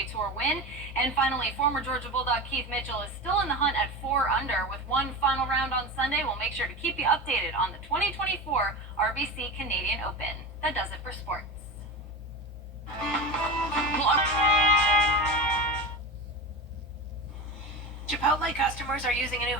Tour win. And finally, former Georgia Bulldog Keith Mitchell is still in the hunt at 4 under. With one final round on Sunday, we'll make sure to keep you updated on the 2024 RBC Canadian Open. That does it for sports. Chipotle customers are using a new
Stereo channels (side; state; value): left; noise; hum, 24 dB below the sound